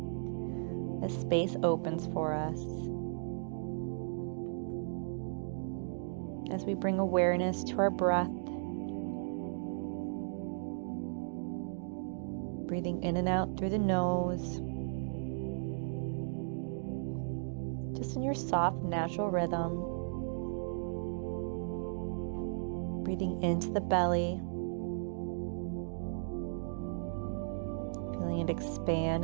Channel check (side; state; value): left; silent; digital silence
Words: as space opens for us. As we bring awareness to our breath, breathing in and out through the nose, just in your soft, natural rhythm. Breathing into the belly, feeling it expand